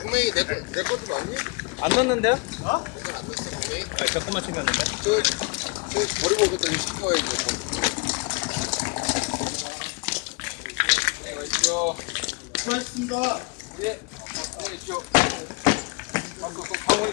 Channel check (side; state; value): right; quieter; 29.4 dB